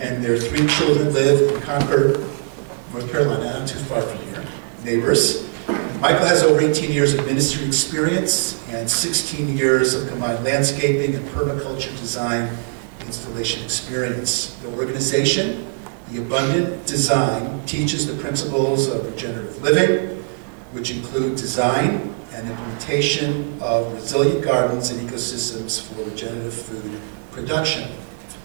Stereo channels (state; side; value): silent; left; 65 dB below the other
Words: and their 3 children live in Concord, North Carolina, not too far from here, neighbors. Michael has over 18 years of ministry experience and 16 years of combined landscaping and permaculture design installation experience. The organization, The Abundant Design, teaches the principles of regenerative living, which include design and implementation of resilient gardens and ecosystems for regenerative food production.